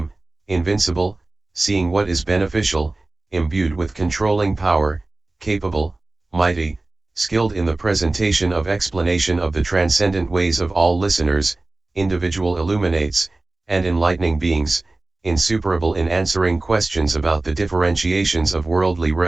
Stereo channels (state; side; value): quieter; left; 3.0 dB